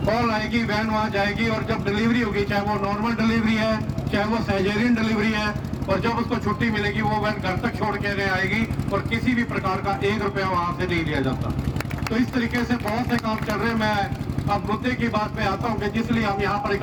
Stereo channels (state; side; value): identical; both; correlation 1.00